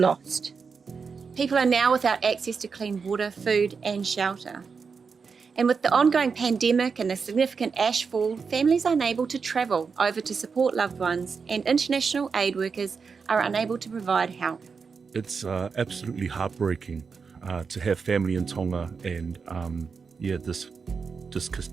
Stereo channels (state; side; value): quieter; left; 5.4 dB